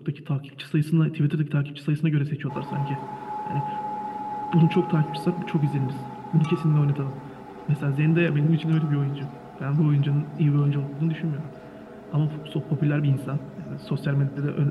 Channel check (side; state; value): both; identical; correlation 1.00